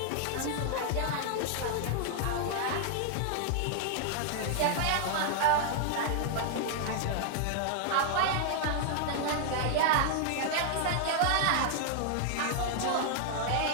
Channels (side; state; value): both; different; correlation 0.00